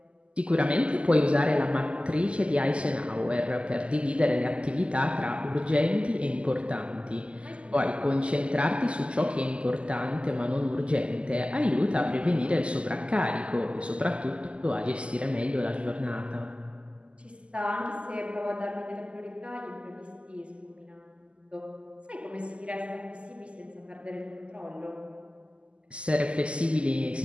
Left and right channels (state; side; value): late; left; 0.055 ms